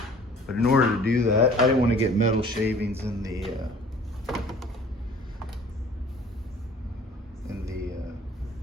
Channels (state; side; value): normal; both; correlation 0.50